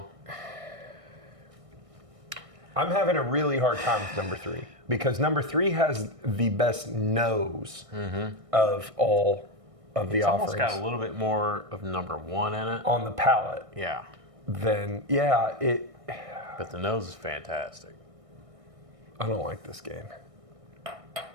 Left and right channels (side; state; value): left; late; 1.6 ms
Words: I'm having a really hard time with number 3 because number 3 has the best nose of all of the It's offerings almost got a little bit more of number 1 in it. on the palate. Yeah. Then yeah, But the nose is fantastic. I don't like this game.